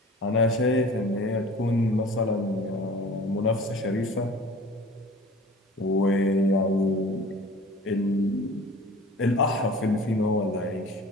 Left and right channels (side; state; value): both; normal; correlation 0.43